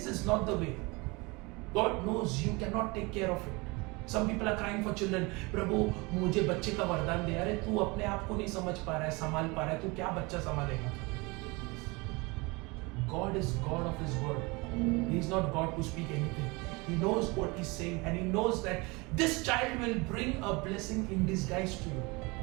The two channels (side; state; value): left; quieter; 26.0 dB